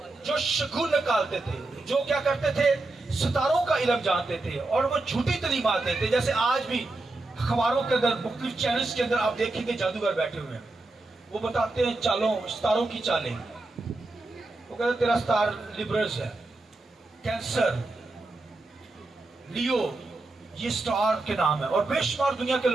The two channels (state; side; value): quieter; left; 3.1 dB